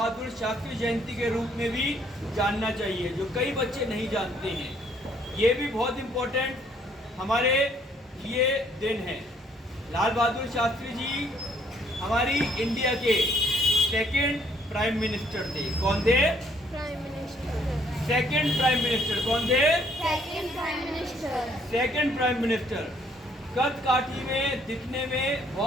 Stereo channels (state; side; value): normal; both; correlation 0.65